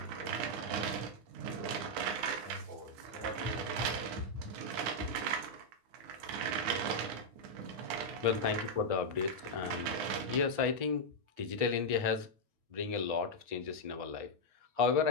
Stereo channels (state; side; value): late; left; 10 ms